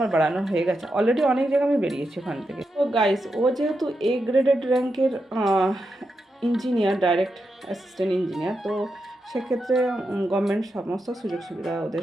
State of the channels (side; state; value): both; normal; correlation 0.86